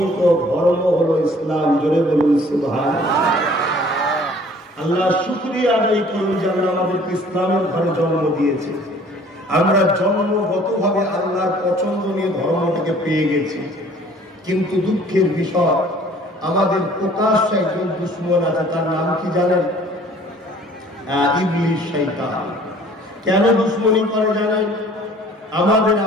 ধর্ম হলো ইসলাম। জোরে বলুন সুবহানাল্লাহ। আল্লাহ শুকরিয়া আদায় করুন যে আল্লাহ আমাদেরকে ইসলামের ঘরে জন্ম দিয়েছে। আমরা জন্মগতভাবে আল্লাহর পছন্দনীয় ধর্মটাকে পেয়ে গেছি। কিন্তু দুঃখের বিষয়, আমাদের প্রকাশ্য একজন দুশমন আছে। তার নাম কি জানেন? ইবলিস, শয়তান। কেন দুশমনি করে জানেন? আমাদের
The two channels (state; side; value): normal; both; correlation 0.53